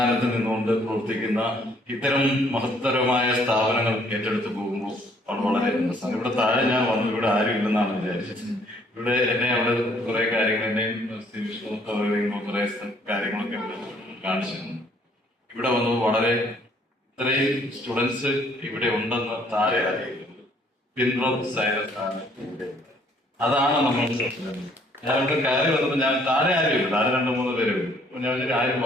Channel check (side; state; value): both; normal; correlation 0.63